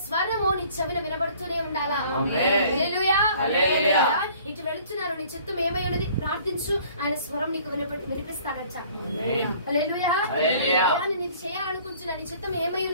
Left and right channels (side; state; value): both; inverted; correlation -0.54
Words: స్వరము నీ చెవిన వినబడుతూనే ఉండాలా. హల్లెలూయా. ఇటు వెళుతున్నారు, నీ చిత్తం ఏమై ఉన్నది ప్రార్థించు, ఆయన స్వరం నీకు వినిపిస్తాడట. హల్లెలూయా. నీకు చేయాలనుకుంటున్నా నీ చిత్తం ఏమై